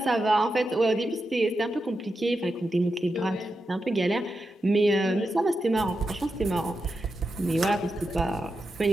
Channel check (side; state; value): both; normal; correlation 0.88